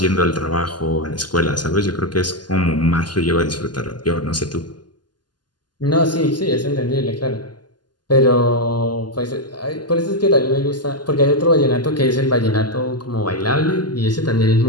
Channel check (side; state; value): right; late; 0.71 ms